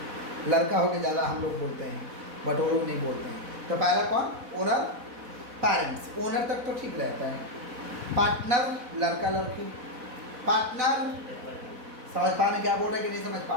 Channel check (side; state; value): left; late; 4.1 ms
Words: लड़का हो के ज़्यादा हम लोग बोलते हैं, बट वो लोग नहीं बोलते हैं। तो पहला कौन, ओनर, पेरेंट्स, ओनर तक तो ठीक रहता है। पार्टनर लड़का लड़की, पार्टनर समझ पा रहे क्या बोल रहे हैं कि नहीं समझ